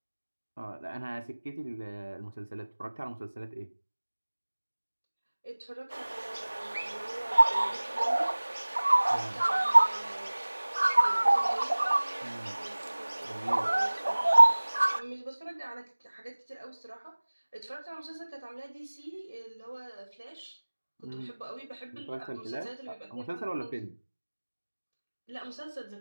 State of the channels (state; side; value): inverted; both; correlation -1.00